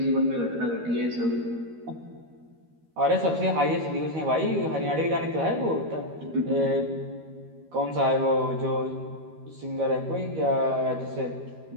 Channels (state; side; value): late; left; 13 ms